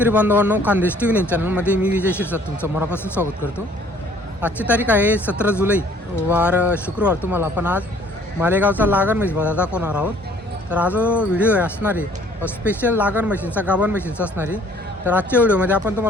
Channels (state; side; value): normal; both; correlation 0.57